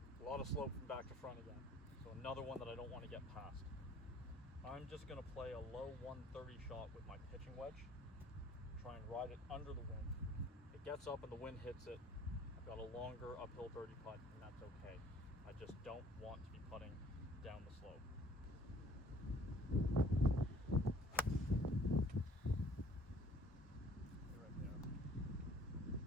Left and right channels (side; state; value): both; normal; correlation 0.56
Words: A lot of slope from back to front again, so another one that I don't want to get past. I'm just going to play a low 130 shot with my pitching wedge. Try and ride it under the wind. It gets up and the wind hits it. I've got a longer uphill birdie putt, and that's okay. I just don't want to be putting down the slope. Right there.